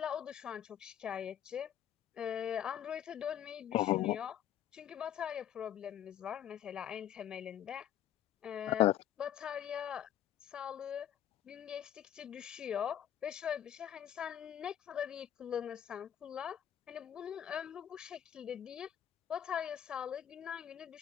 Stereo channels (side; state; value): right; quieter; 10.6 dB